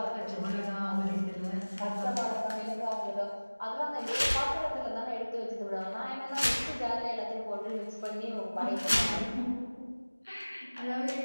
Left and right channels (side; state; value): both; inverted; correlation -1.00